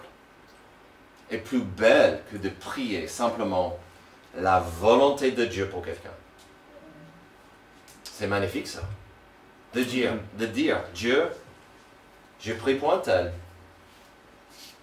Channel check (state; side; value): identical; both; correlation 1.00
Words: et plus belle que de prier simplement la volonté de Dieu pour quelqu'un? C'est magnifique ça. De dire, Dieu, je prie pour un tel,